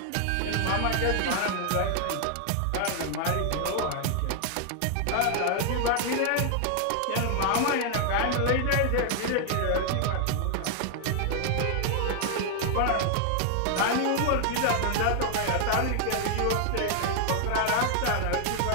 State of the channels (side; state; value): both; different; correlation 0.00